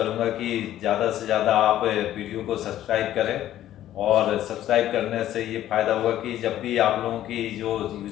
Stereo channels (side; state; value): right; quieter; 12.7 dB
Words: कि ज़्यादा से ज़्यादा आप वीडियो को सब्सक्राइब करें। और सब्सक्राइब करने से ये फ़ायदा होगा कि जब भी आप लोगों की जो